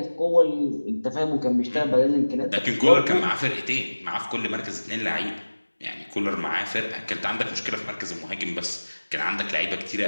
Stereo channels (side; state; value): both; inverted; correlation -1.00